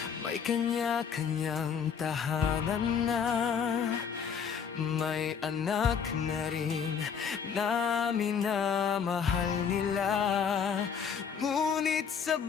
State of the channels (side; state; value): right; quieter; 6.9 dB